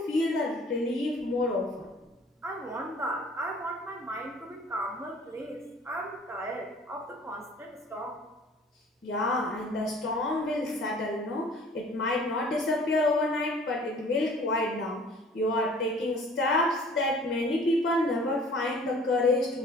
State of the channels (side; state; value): both; normal; correlation 0.51